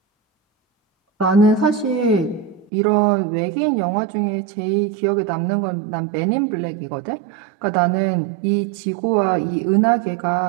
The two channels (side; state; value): left; drops out; at 2.7 s